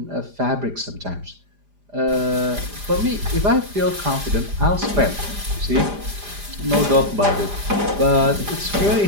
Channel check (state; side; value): late; left; 4.9 ms